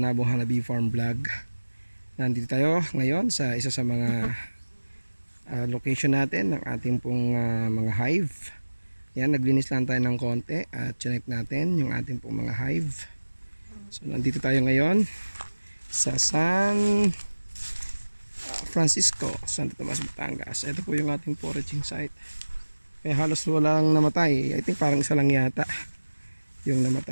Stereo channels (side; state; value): both; inverted; correlation -1.00